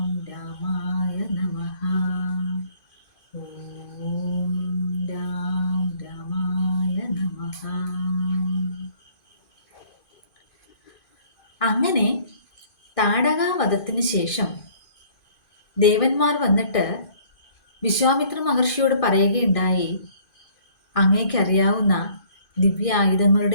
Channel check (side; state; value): right; late; 2.5 ms